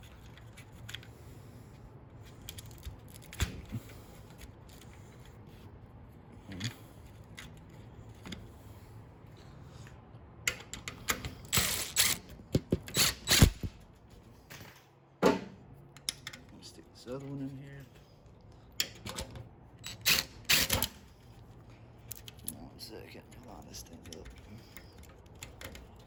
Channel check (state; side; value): identical; both; correlation 1.00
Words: this other one in here. 1 second, line this thing up.